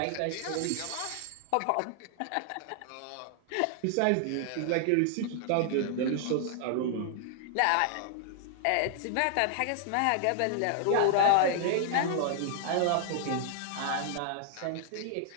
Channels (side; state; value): both; different; correlation 0.00